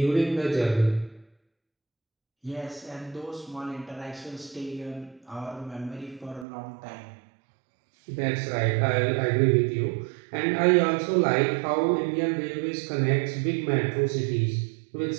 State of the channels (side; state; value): left; drops out; at 6.5 s